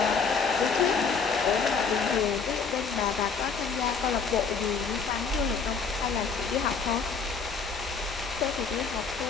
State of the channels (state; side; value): quieter; right; 5.5 dB